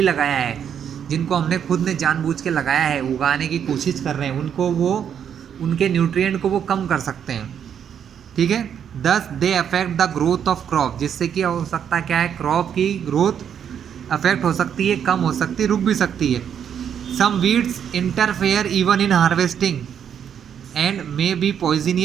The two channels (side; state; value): left; quieter; 8.4 dB